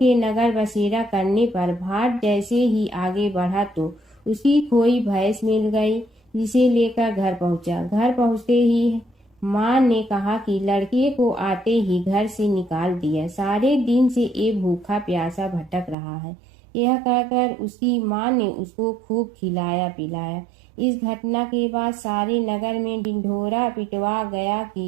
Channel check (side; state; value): left; drops out; at 16.0 s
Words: नगर बसेरा करने पर भाट जैसे ही आगे बढ़ा तो उसकी खोई भैंस मिल गई, जिसे लेकर घर पहुंचा। घर पहुंचते ही माँ ने कहा कि लड़के को आते ही घर से निकाल दिया, सारे दिन से ये भूखा प्यासा भटक रहा है। यह कहकर उसकी माँ ने उसको खूब खिलाया पिलाया। इस घटना के बाद सारे नगर में ढिंढोरा पिटवा गया